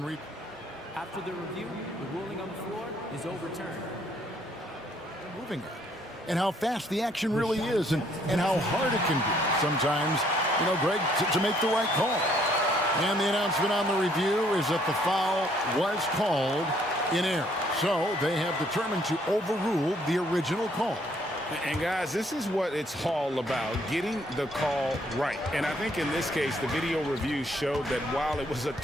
after the review, the ruling on the floor is overturned. Moving it. And how fast the action really is and how hard it can be sometimes, you know, Greg, to make the right call. And the announcement on the review is that the foul was called in error. So they have determined to overrule the original call. And guys, this is what it's all about, getting the call right. And I think in this case, the video review showed that while it was a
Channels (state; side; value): normal; both; correlation 0.65